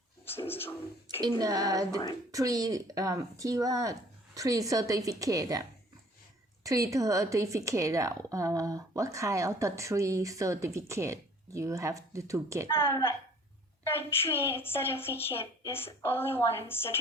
in the three certificate, what kind of the three certificate you have to get? The three certificate is only one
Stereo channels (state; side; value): normal; both; correlation 0.53